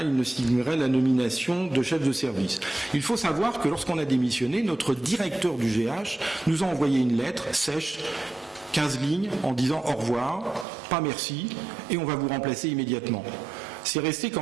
il ne signerait la nomination de chef de service. Il faut savoir que lorsqu'on a démissionné, notre directeur du GH nous a envoyé une lettre sèche, 15 lignes, en disant au revoir, pas merci, et on va vous remplacer immédiatement. C'est resté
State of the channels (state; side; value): drops out; left; at 10.7 s